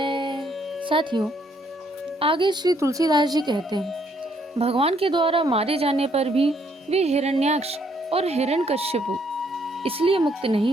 साथियों, आगे श्री तुलसीदास जी कहते हैं, भगवान के द्वारा मारे जाने पर भी वे हिरण्याक्ष और हिरण्यकश्यप इसलिए मुक्त नहीं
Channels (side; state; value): both; normal; correlation 0.69